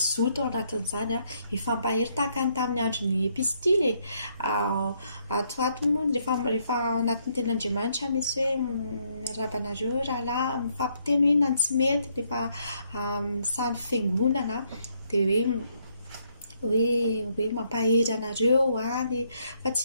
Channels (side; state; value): both; inverted; correlation -0.72